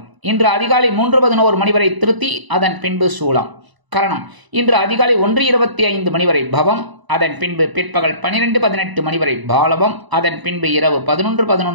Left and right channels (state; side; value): late; left; 1.0 ms